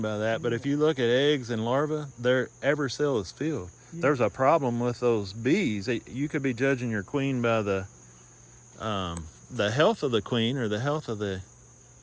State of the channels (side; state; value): both; identical; correlation 1.00